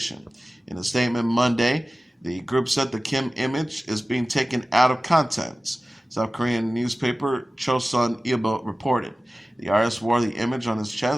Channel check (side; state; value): both; normal; correlation 0.97